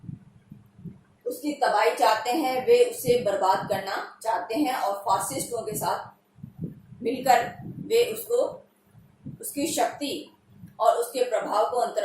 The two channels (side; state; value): both; identical; correlation 1.00